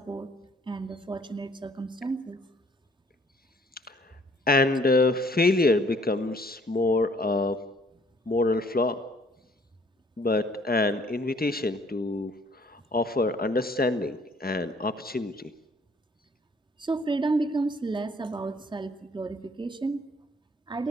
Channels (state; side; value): normal; both; correlation 0.60